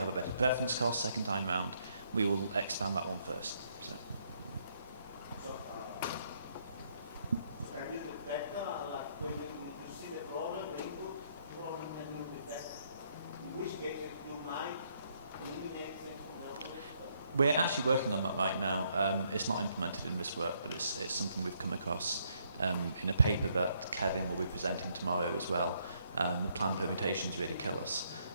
a better preference cost second time round, we will expand that one first. So can you detect, like when you see the problem, the input problem, can you detect in which cases you might eliminate things from the open list? we're actually working on that right now. It's not implemented in this work, but it's something we've come across in a paper that Kevin will be presenting tomorrow as well. The planned permutations really kill us.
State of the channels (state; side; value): inverted; both; correlation -0.71